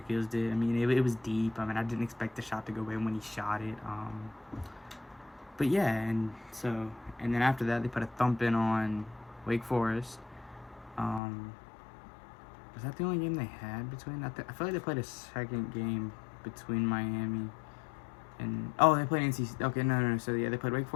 Keels did. I mean, it was deep. I mean, I didn't expect the shot to go in when he shot it. But yeah, and then after that, they put a thumping on Wake Forest. Was that the only game they had between that? I feel like they played a second game between Miami and they played NC. Okay, no. So yeah, they played Wake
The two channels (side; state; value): right; drops out; at 11.2 s